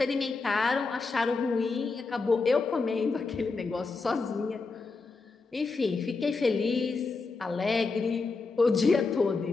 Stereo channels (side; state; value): right; quieter; 4.1 dB